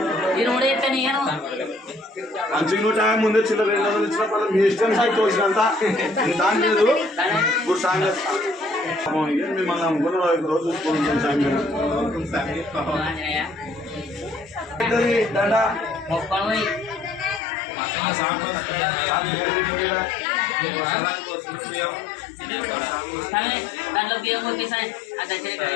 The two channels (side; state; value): right; drops out; at 17.4 s